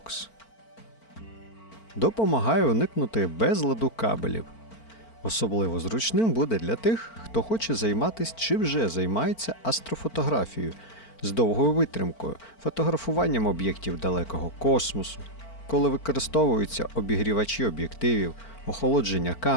Допомагає уникнути безладу кабелів. Особливо зручним буде для тих, хто хоче займатися чи вже займається астрофотографією з довгою витримкою, фотографуванням об'єктів далекого космосу, коли використовуються обігрівачі об'єктивів, охолодження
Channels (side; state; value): right; late; 4.4 ms